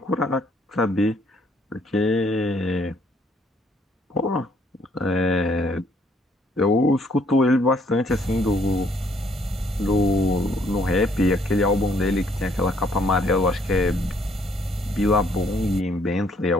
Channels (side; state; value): both; normal; correlation 0.66